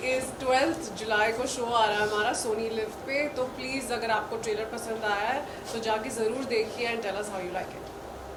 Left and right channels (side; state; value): both; identical; correlation 1.00